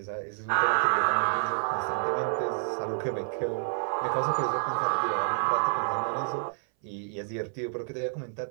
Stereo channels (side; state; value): left; silent; 59 dB below the other